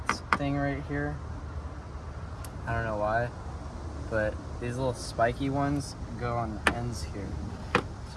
thing right here. I don't know why, but these little spiky ones go on the ends here.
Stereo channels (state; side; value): identical; both; correlation 1.00